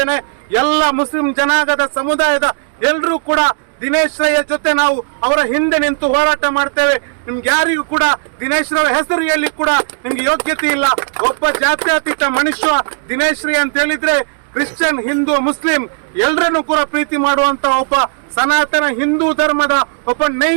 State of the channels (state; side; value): silent; left; digital silence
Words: ಎಲ್ಲ ಮುಸ್ಲಿಂ ಜನಾಂಗದ ಸಮುದಾಯದ ಎಲ್ಲರೂ ಕೂಡ ದಿನೇಶ್ ರೈ ಜೊತೆ ನಾವು ಅವರ ಹಿಂದೆ ನಿಂತು ಹೋರಾಟ ಮಾಡ್ತೇವೆ. ನಿಮ್ಗೆ ಯಾರಿಗೂ ಕೂಡ ದಿನೇಶ್ ರೈ ಹೆಸರು ಹೇಳಿ ಕೂಡ ನಿಮ್ಗೆ ಯೋಗ್ಯತೆ ಇಲ್ಲ. ಒಬ್ಬ ಜಾತ್ಯತೀತ ಮನುಷ್ಯ ದಿನೇಶ್ ರೈ ಅಂತ ಹೇಳಿದ್ರೆ ಕ್ರಿಶ್ಚಿಯನ್, ಹಿಂದೂ, ಮುಸ್ಲಿಂ ಎಲ್ಲರನ್ನು ಕೂಡ ಪ್ರೀತಿ ಮಾಡುವಂತ ಒಬ್ಬ ಸನಾತನ ಹಿಂದೂ ಧರ್ಮದ ಒಬ್ಬ